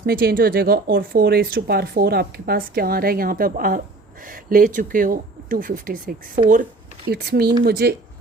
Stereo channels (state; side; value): quieter; left; 3.2 dB